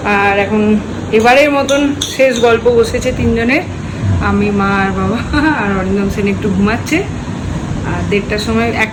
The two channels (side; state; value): both; identical; correlation 1.00